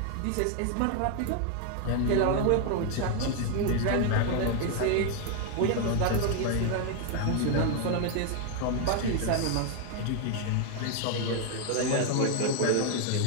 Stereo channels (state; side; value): different; both; correlation 0.00